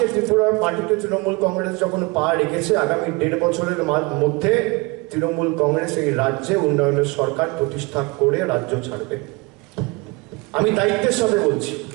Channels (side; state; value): left; quieter; 26.7 dB